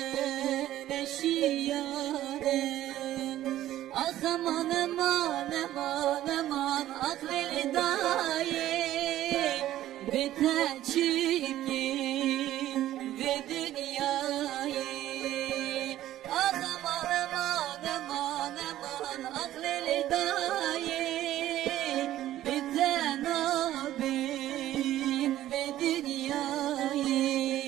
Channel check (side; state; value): left; quieter; 13.5 dB